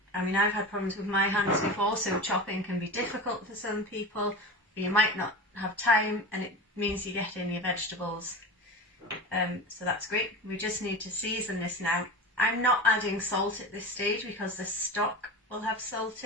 I mean I've had problems with my hands before, so chopping can be difficult for some people, or you might not have time and it means you get in your vegetables. So that's great. We just need to season this now. I'm not adding salt at this stage because the stock will have salt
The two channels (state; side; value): normal; both; correlation 0.28